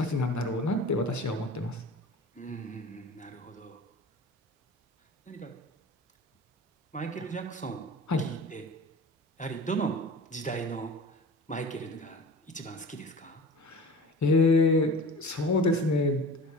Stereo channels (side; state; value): both; normal; correlation 0.38